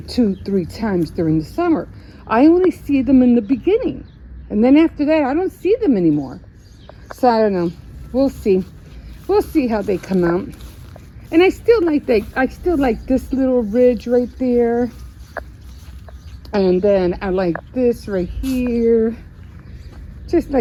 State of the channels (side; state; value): both; identical; correlation 1.00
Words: 2-3 times during the summer. I only see them in the beginning. And then after that, I don't see them anymore. So I don't know. We'll see. We'll see how they come out. And I still like this little ridge right there. And then I like this right here. Just